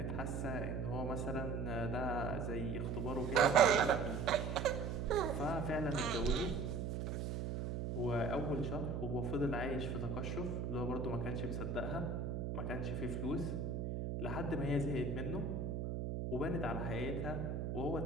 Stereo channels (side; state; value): right; noise; hum, 2 dB below the sound